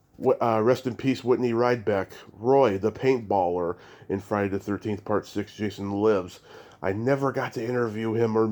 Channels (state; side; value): identical; both; correlation 1.00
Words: rest in peace, Whitney Ridebeck, Roy, the paintballer in Friday the 13th, Part 6, Jason Lives. I never got to interview him or